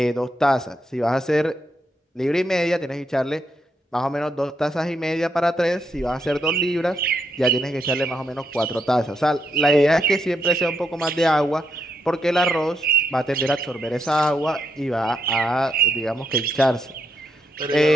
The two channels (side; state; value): both; normal; correlation 0.80